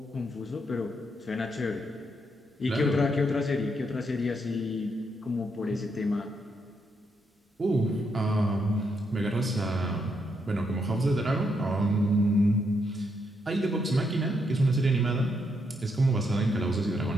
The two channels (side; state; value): both; normal; correlation 0.78